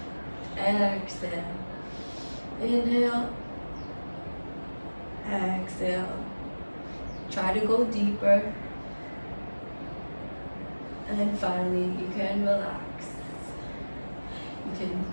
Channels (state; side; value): inverted; both; correlation -1.00